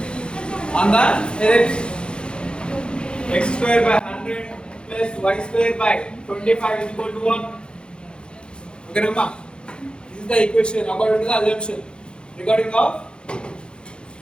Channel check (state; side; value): late; right; 0.052 ms